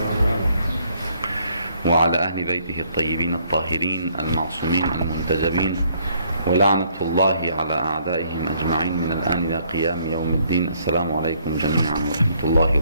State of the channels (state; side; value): inverted; both; correlation -0.67